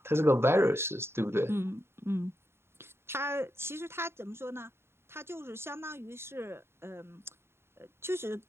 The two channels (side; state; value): left; late; 0.12 ms